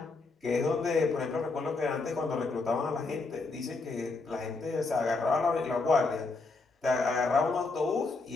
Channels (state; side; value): quieter; right; 3.8 dB